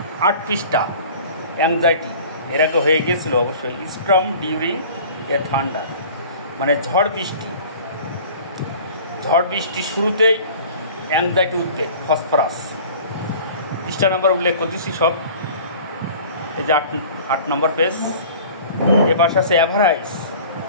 8 পৃষ্ঠা, অ্যাংজাইটি এর আগে হয়ে গিয়েছিল অবশ্যই। স্টর্ম ডিউরিং এ থান্ডার, মানে ঝড় বৃষ্টি শুরুতেই অ্যাংজাইটি উদ্বেগ, ফসফরাস। পৃষ্ঠা নাম্বার উল্লেখ করতেছি সব। এই যে 8 নম্বর পেজ। এবার আছে অ্যাভারাইজ,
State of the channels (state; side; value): inverted; both; correlation -0.44